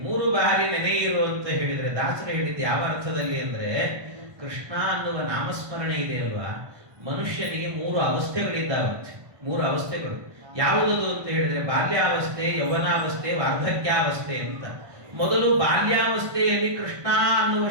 3 ಬಾರಿ ನೆನೆಯಿರು ಅಂತ ಹೇಳಿದ್ರೆ ದಾಸರು ಹೇಳಿದ್ದು ಯಾವ ಅರ್ಥದಲ್ಲಿ ಅಂದ್ರೆ, ಕೃಷ್ಣ ಅನ್ನುವ ನಾಮಸ್ಮರಣೆ ಇದೆ ಅಲ್ವಾ, ಮನುಷ್ಯನಿಗೆ 3 ಅವಸ್ಥೆಗಳಿದ್ದಾವಂತೆ. 3 ಅವಸ್ಥೆಗಳು ಯಾವುದದು ಅಂತ ಹೇಳಿದ್ರೆ, ಬಾಲ್ಯಾವಸ್ಥೆ, ಯೌವನಾವಸ್ಥೆ, ವಾರ್ಧಕ್ಯಾವಸ್ಥೆ ಅಂತ. ಮೊದಲು ಬಾಲ್ಯಾವಸ್ಥೆಯಲ್ಲಿ ಕೃಷ್ಣ ಅನ್ನುವ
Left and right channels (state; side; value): late; left; 1.2 ms